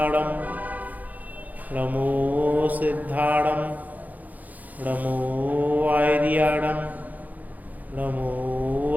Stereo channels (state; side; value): late; left; 0.080 ms